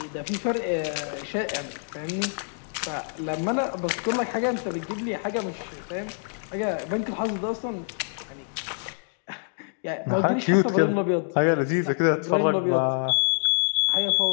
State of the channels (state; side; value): silent; right; 61 dB below the other